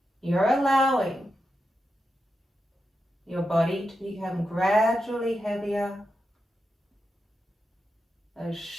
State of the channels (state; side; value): normal; both; correlation 0.88